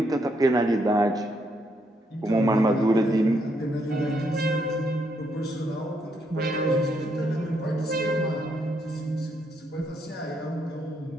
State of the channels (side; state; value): both; normal; correlation 0.75